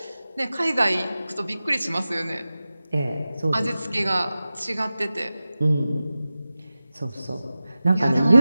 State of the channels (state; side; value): inverted; both; correlation -0.95